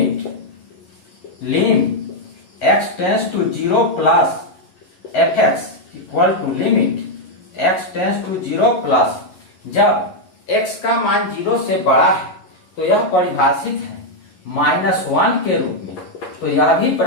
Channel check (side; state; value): right; late; 11 ms